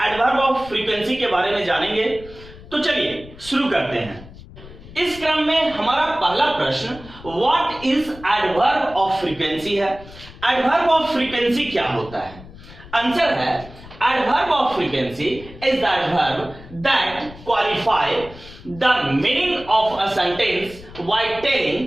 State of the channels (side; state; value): left; noise; rumble, 18 dB below the sound